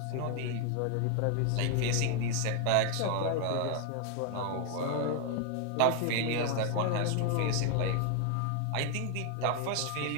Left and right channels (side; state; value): both; different; correlation 0.00